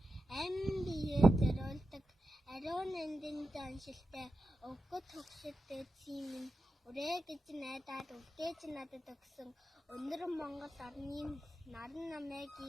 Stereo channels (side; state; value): both; normal; correlation 0.90